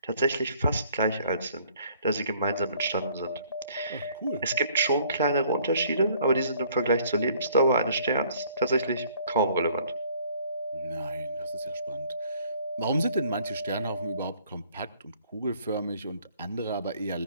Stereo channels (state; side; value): inverted; both; correlation -0.60